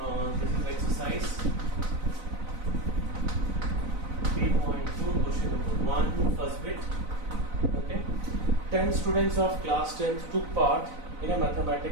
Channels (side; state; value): left; late; 4.0 ms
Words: This is exercise 3.2, question number 1, first bit. Okay, 10 students of class 10th took part in a